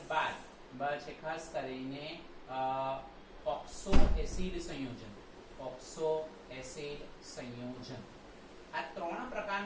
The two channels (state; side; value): identical; both; correlation 1.00